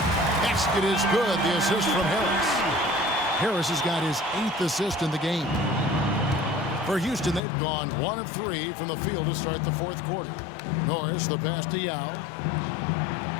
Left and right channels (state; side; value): drops out; right; at 7.4 s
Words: Basket is good. The assist from Harris. Harris has got his 8th assist in the game. For Houston, they've gone 1 of 3 from the field to start the fourth quarter. Norris, the pass to Yao.